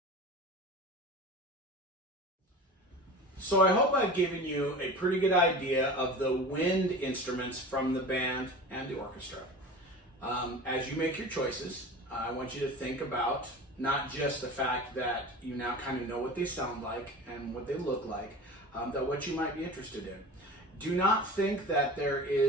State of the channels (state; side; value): normal; both; correlation 0.35